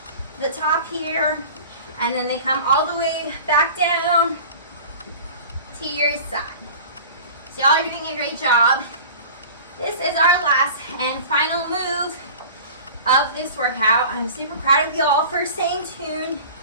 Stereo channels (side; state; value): both; inverted; correlation -0.40